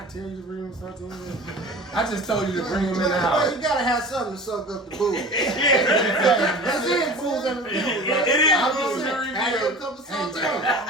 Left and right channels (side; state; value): both; normal; correlation 0.38